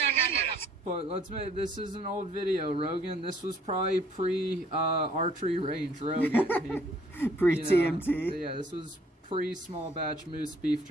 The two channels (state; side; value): normal; both; correlation 0.60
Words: idiots. But let's make this is an old video, Rogan. This was probably pre archery range, Rogan. Pre-TMT? Yeah, this was pre small batch moose beef